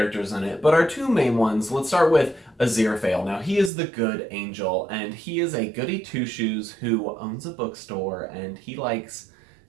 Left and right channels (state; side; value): drops out; left; at 3.7 s